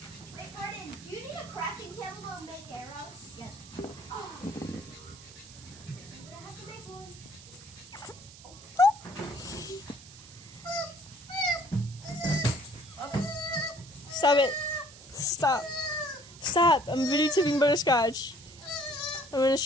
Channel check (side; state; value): right; noise; hiss, 18 dB below the sound